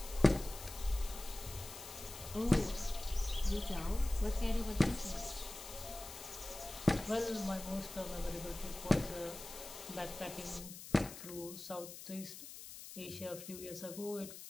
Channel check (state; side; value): noise; left; hiss, 12 dB below the sound